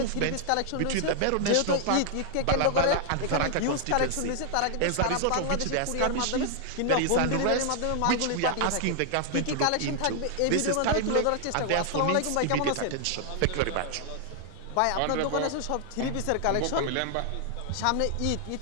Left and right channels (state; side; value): different; both; correlation 0.00